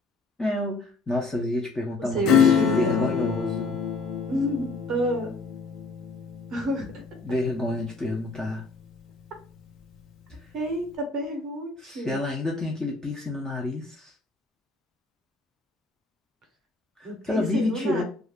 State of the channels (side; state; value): right; quieter; 3.4 dB